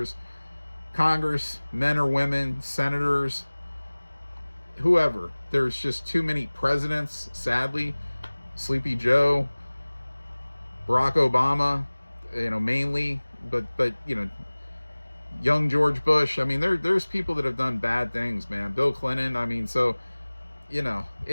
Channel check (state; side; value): inverted; both; correlation -1.00